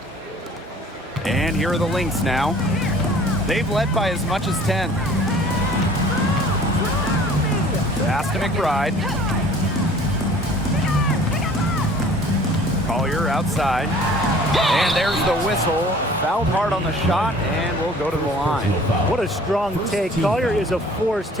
And here are the Lynx now. They've led by as much as 10. Pass to McBride. Collier outside. And there's the whistle. Fouled hard on the shot, and we'll go to the line. What a strong take. Collier is a force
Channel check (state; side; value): normal; both; correlation 0.50